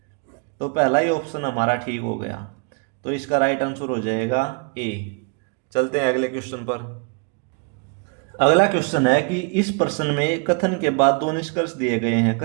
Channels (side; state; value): left; quieter; 32.2 dB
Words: तो पहला ही ऑप्शन हमारा ठीक हो गया, तो इसका राइट आंसर हो जाएगा A। चलते हैं अगले क्वेश्चन पर। अगला क्वेश्चन है कि इस प्रश्न में कथन के बाद दो निष्कर्ष दिए गए हैं।